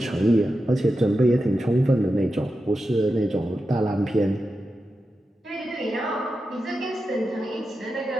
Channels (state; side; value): normal; both; correlation 0.90